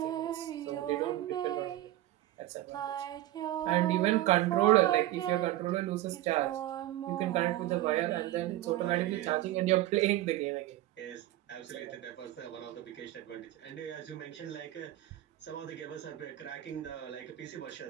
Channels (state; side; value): quieter; left; 15.0 dB